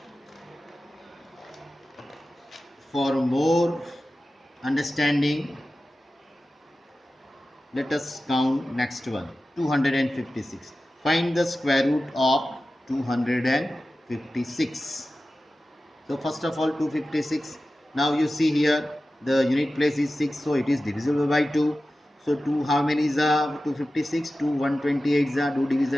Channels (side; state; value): both; normal; correlation 0.94